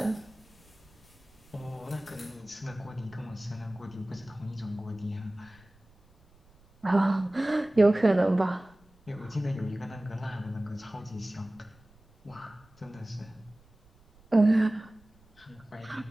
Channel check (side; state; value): right; noise; rumble, 29 dB below the sound